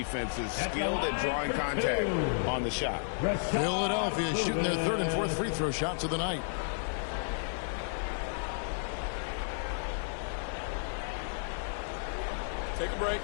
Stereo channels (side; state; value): right; silent; 56 dB below the other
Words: skilled at drawing contact on the shot. Philadelphia shooting their 3rd and 4th free throw shots of the night. Take a break.